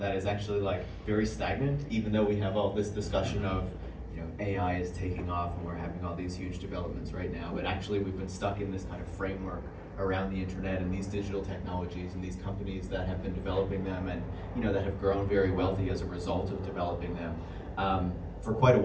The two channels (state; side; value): identical; both; correlation 1.00